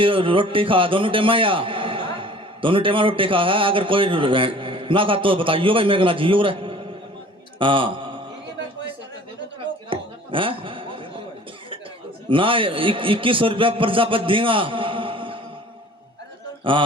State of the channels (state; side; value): normal; both; correlation 0.48